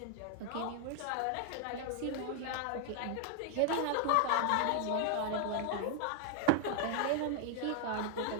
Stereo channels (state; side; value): different; both; correlation 0.00